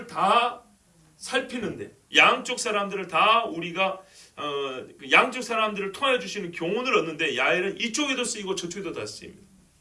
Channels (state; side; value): identical; both; correlation 1.00